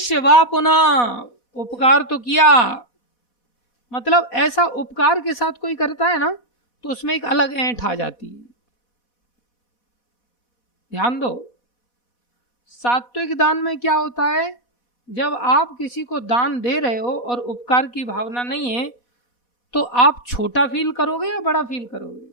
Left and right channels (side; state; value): right; late; 4.1 ms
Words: वा पुनः, उपकार तो किया, मतलब ऐसा उपकार के साथ कोई करता है ना तो उसमें एक अलग ऐंठ आ जाती है। ध्यान दो, सात्विक दान में क्या होता है, जब आप किसी को दान दे रहे हो और उपकार की भावना नहीं है तो आप छोटा फील करोगे या बड़ा फील करोगे?